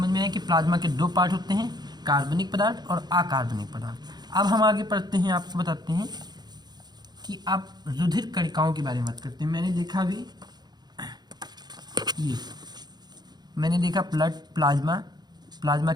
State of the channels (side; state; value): left; late; 0.20 ms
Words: में आया कि प्लाज्मा के 2 पार्ट होते हैं, कार्बनिक पदार्थ और अकार्बनिक पदार्थ। अब हम आगे पढ़ते हैं, आपको बताते हैं कि आप रुधिर कणिकाओं के बारे में बात करते हैं। मैंने देखा भी ये मैंने देखा प्लाज्मा